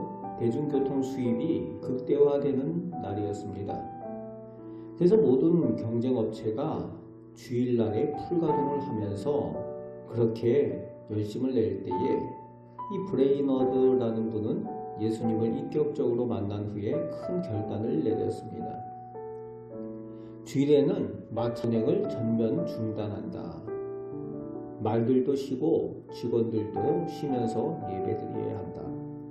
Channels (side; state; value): both; identical; correlation 1.00